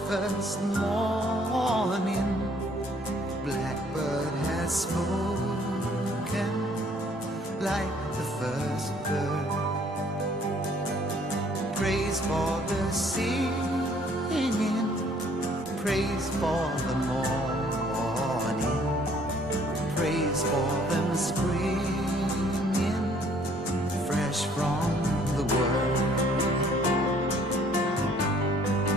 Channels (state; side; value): normal; both; correlation 0.60